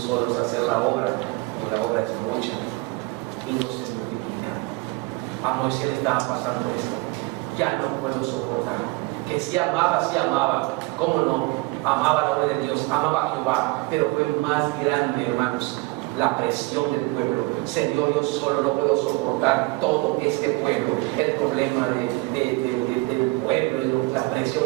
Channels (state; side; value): quieter; left; 24.5 dB